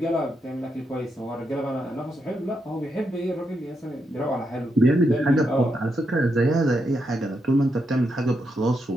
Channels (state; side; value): normal; both; correlation 0.82